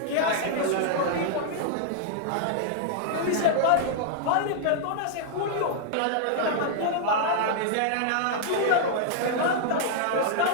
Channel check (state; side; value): different; both; correlation -0.01